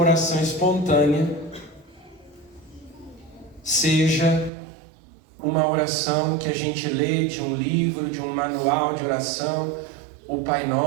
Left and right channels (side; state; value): left; drops out; at 4.5 s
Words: espontânea, seja uma oração que a gente lê de um livro, de um manual de oração, o Pai